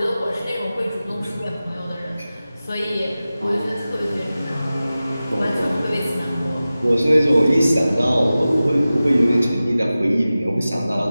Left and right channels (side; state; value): both; inverted; correlation -0.95